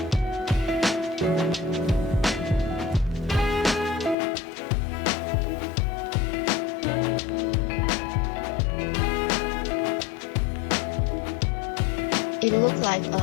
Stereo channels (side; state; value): right; drops out; at 4.2 s